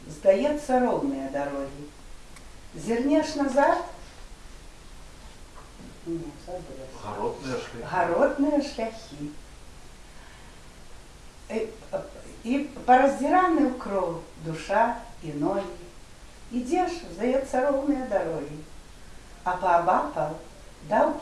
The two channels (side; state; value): both; identical; correlation 1.00